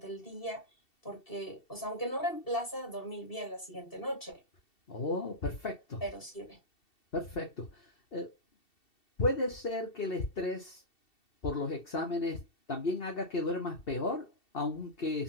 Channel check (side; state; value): right; late; 2.7 ms